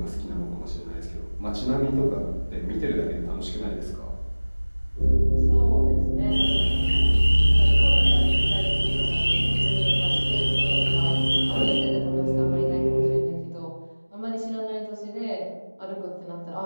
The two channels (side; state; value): both; inverted; correlation -1.00